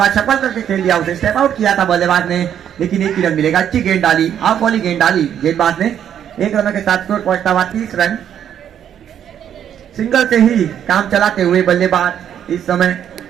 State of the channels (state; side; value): quieter; left; 9.5 dB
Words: सफल करके खेल दिया उसे स्टेप आउट किया था बल्लेबाज ने लेकिन 1 ही रन मिलेगा। अच्छी गेंद डाली हाफ वाली गेंद डाली गेंदबाज ने। 1 रनों के साथ स्कोर पहुंचता हुआ 30 रन। सिंगल से ही काम चलाते हुए बल्लेबाज इस समय।